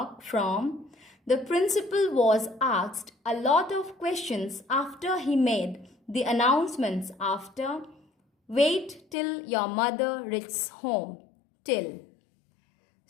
From, the principal was asked a lot of questions after he made the announcements. After, wait till your mother reaches home. Till.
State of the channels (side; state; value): right; drops out; at 9.2 s